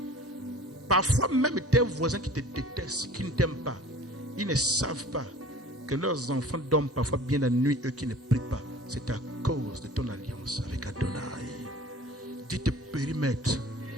Parfois même tes voisins qui te détestent, qui ne t'aiment pas, ils ne savent pas que leurs enfants dorment parfois bien la nuit, eux qui ne prient pas. C'est à cause de ton alliance avec Adonai. Dis tes périmètres.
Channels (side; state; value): both; normal; correlation 0.45